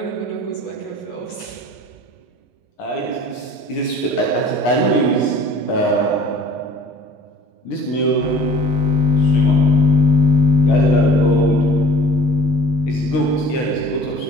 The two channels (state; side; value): late; right; 7.5 ms